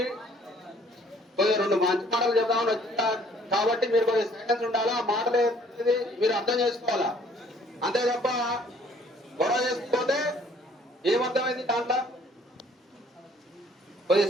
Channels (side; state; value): both; normal; correlation 0.59